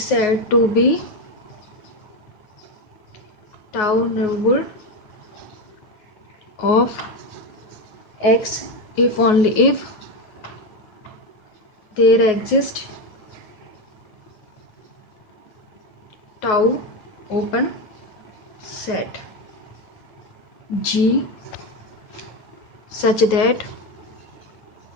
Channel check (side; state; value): right; late; 9.4 ms